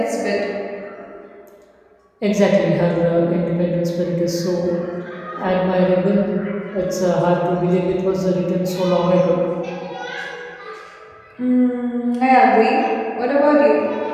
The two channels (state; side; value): identical; both; correlation 1.00